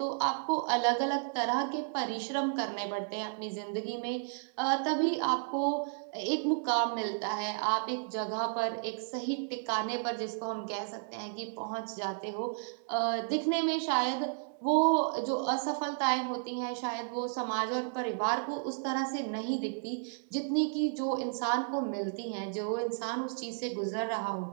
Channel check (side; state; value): left; silent; digital silence